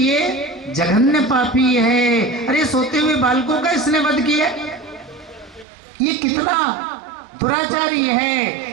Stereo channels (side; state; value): left; drops out; at 5.7 s